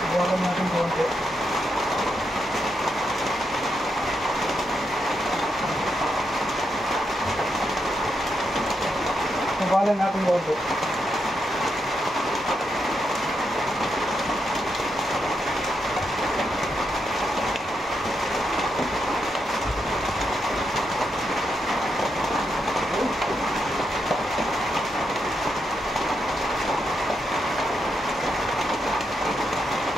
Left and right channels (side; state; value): both; normal; correlation 0.83